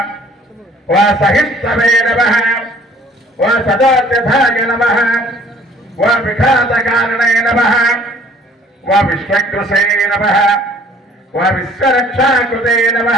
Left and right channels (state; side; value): normal; both; correlation 0.55